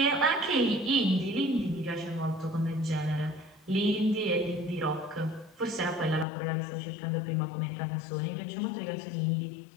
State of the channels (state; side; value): drops out; right; at 6.2 s